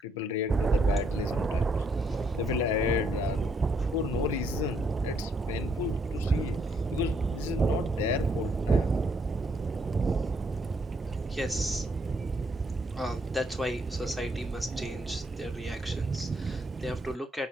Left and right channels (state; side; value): normal; both; correlation 0.72